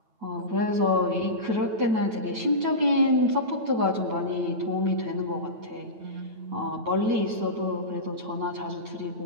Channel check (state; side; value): late; left; 9.1 ms